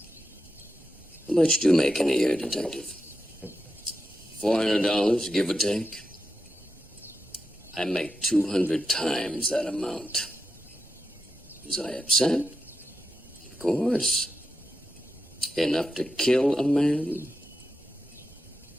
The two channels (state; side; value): normal; both; correlation 0.87